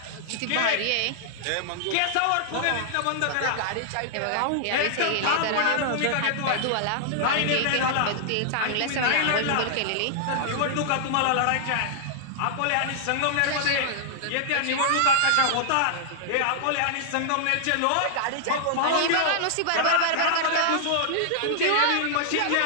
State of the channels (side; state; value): both; different; correlation -0.01